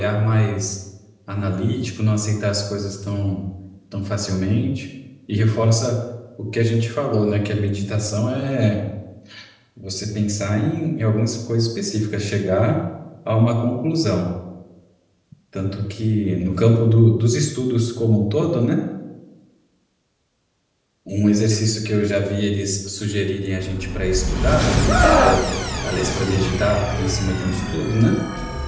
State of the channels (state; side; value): identical; both; correlation 1.00